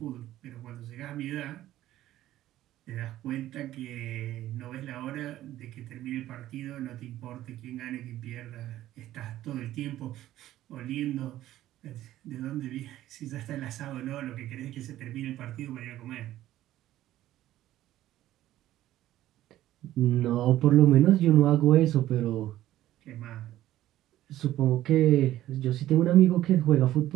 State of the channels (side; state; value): left; quieter; 14.0 dB